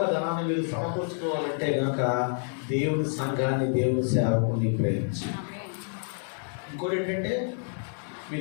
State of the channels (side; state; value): right; silent; 59 dB below the other